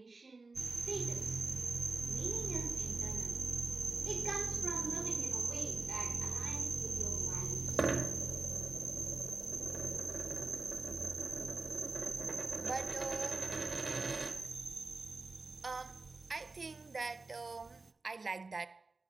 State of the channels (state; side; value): quieter; left; 3.7 dB